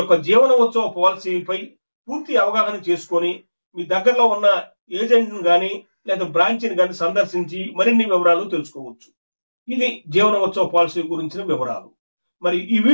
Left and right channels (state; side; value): inverted; both; correlation -1.00